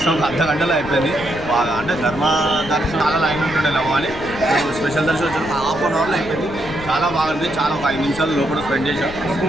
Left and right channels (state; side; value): noise; left; rumble, 14 dB below the sound